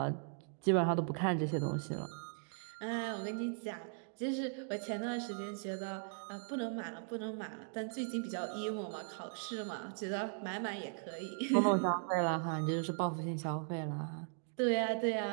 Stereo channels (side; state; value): left; silent; 52 dB below the other